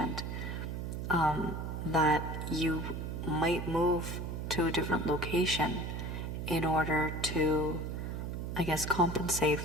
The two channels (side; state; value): right; noise; hum, 4 dB below the sound